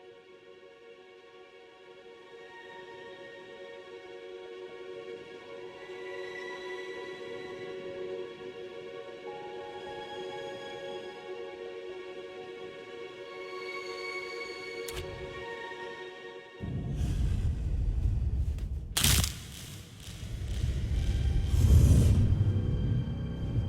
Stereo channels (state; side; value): identical; both; correlation 1.00